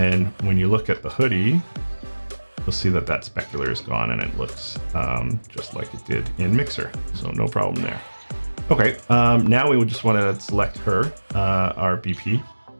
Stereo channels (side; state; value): both; inverted; correlation -1.00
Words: when you look at the hoodie, you'll see that that specular is gone and it looks just like it did in Mixer. So no problem there. Okay, now we would just want to select her, our BP.